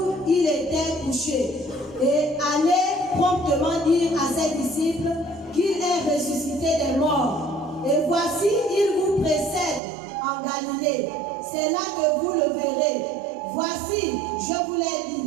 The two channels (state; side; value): drops out; left; at 9.8 s